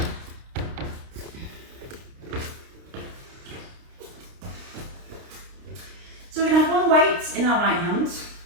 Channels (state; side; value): late; left; 29 ms